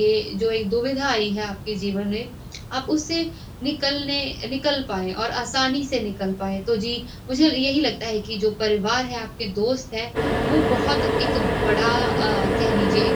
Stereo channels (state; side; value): identical; both; correlation 1.00